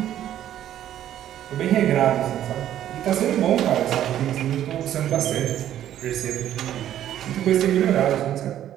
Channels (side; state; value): left; quieter; 11.5 dB